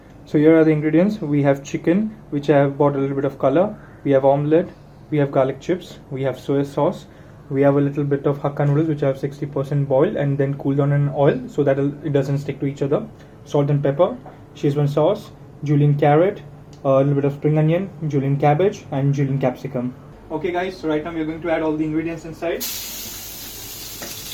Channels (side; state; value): both; identical; correlation 1.00